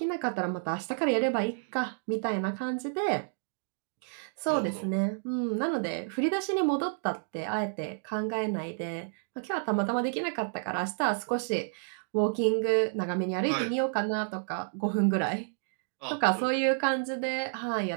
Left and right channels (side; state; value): left; silent; digital silence